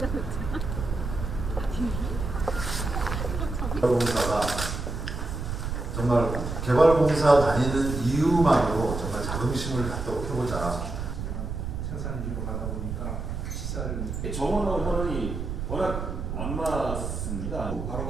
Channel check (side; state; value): right; noise; rumble, 4 dB below the sound